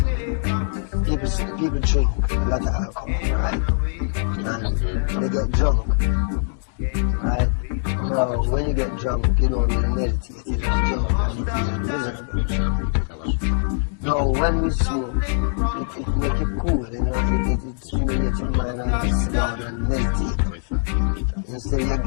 people drink a lot of alcohol, right? And they get drunk, right? Now, when you get drunk, you don't really meditate. You just drunk and you feel miserable. Now, when we smoke, it makes you cool, you know, it stimulates your mind and you sit down and meditate. Instead you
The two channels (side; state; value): right; silent; digital silence